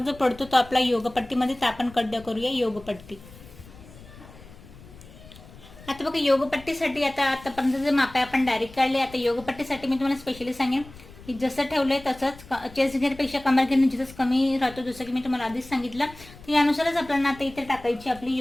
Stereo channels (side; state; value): left; noise; rumble, 20 dB below the sound